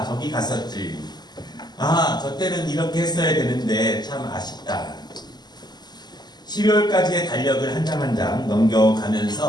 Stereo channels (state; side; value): late; right; 0.20 ms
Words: 저기 갔었지, 저 때는 이렇게 했어야 되는데 참 아쉽다. 12월까지의 달력을 한 장 한 장